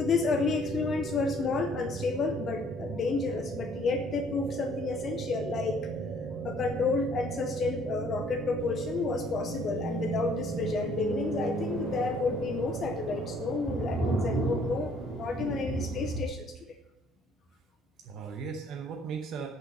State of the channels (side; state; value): both; normal; correlation 0.60